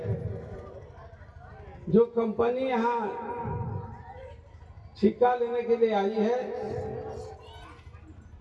जो कंपनी यहाँ ठेका लेने के लिए आई है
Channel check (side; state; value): both; identical; correlation 1.00